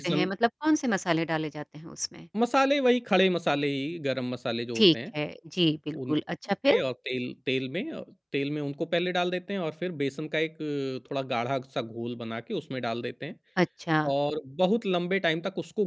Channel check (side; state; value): both; identical; correlation 1.00